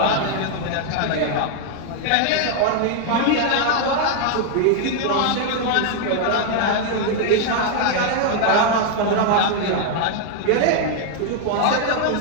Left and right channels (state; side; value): different; both; correlation 0.00